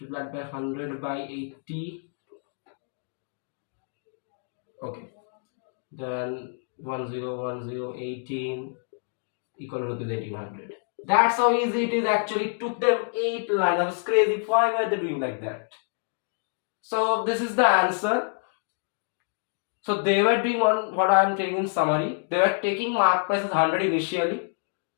by 100 by 80. Okay. Then 101018 equal to rupees 1800. That's how easy it is. Actually took them 8 lines. I was crazy. Why were they doing like that? So this is the answer. So they were doing what I am telling in summary. They were taking mark price as 100 initially.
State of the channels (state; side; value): silent; right; 60 dB below the other